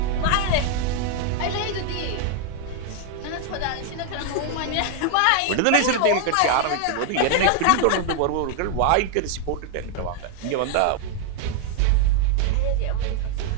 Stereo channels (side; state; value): both; different; correlation 0.00